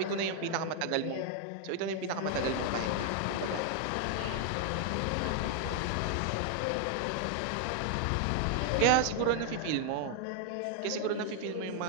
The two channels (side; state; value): both; different; correlation 0.00